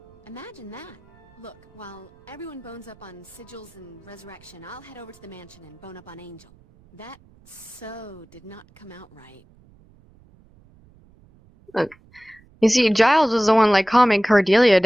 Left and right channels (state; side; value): noise; right; rumble, 28 dB below the sound